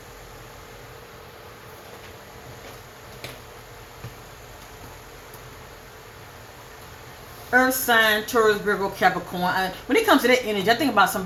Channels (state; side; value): identical; both; correlation 1.00